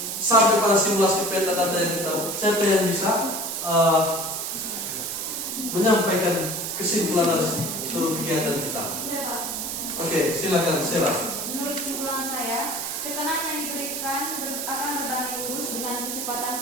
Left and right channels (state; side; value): noise; right; hiss, 4 dB below the sound